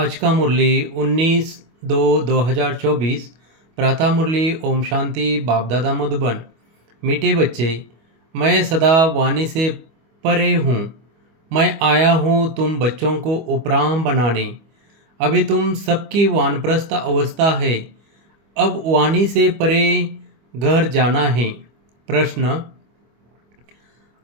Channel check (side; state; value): left; late; 25 ms